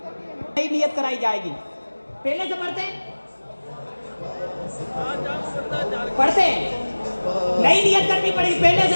नई नियत कराई जाएगी। पहले से पढ़ते हैं नई नियत करनी पड़ेगी। पहले से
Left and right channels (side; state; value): both; inverted; correlation -1.00